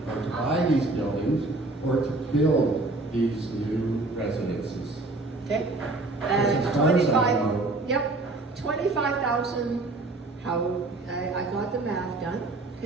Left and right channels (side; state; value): left; quieter; 3.1 dB